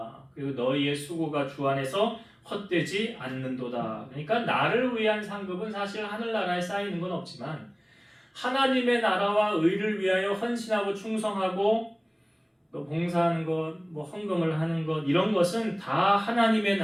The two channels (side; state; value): both; identical; correlation 1.00